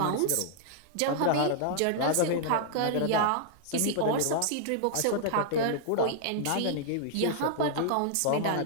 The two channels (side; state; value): both; different; correlation -0.01